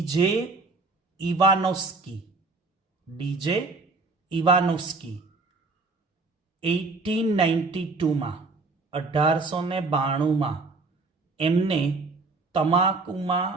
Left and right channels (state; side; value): quieter; left; 3.7 dB